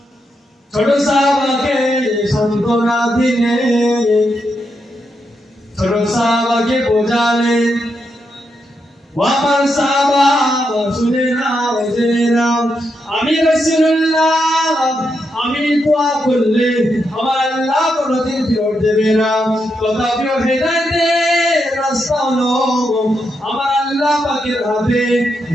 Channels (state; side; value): normal; both; correlation 0.83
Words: ছোট সাহাবাকে সান্ত্বনা দিলেন, ছোট সাহাবাকে বোঝালেন, ও আমার সাহাবা শুনে নাও জেনে নাও, আমি রাসূলুল্লাহ আমি দোয়া করলে আমার আল্লাহ কোনদিন ফেরত দেবে না। তথাপিও হেদায়েতের রাস্তা হলো আমার আল্লাহ পাকের হাতে।